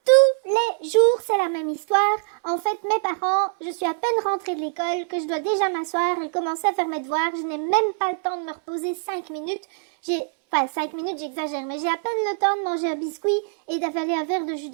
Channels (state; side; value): silent; left; 62 dB below the other